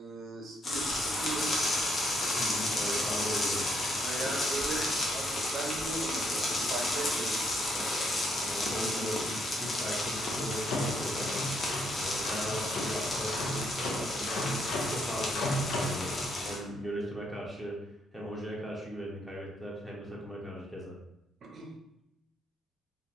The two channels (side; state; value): both; normal; correlation 0.73